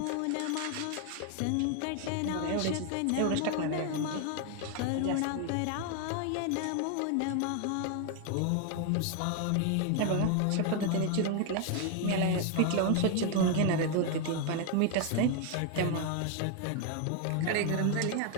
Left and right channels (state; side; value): different; both; correlation 0.01